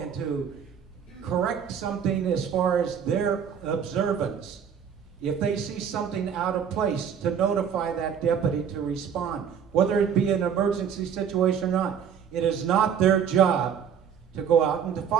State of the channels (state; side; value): quieter; left; 7.8 dB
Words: to correct something as far as their observance. If they see something out of place, to notify that deputy to respond, whether it be an emergency situation or not. It is not their job to go out and to